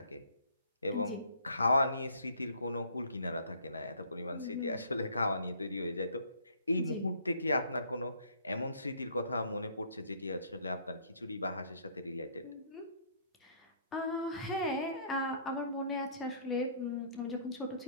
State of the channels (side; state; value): both; inverted; correlation -0.59